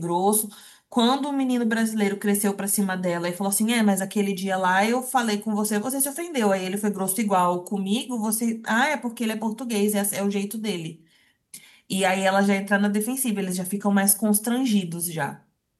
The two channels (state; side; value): identical; both; correlation 1.00